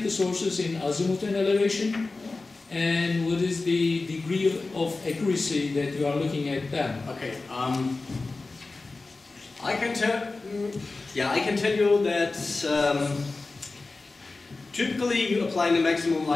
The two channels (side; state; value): right; quieter; 3.6 dB